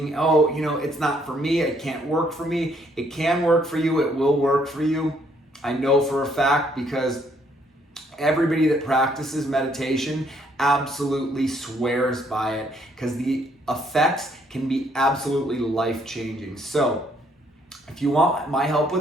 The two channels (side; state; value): both; normal; correlation 0.67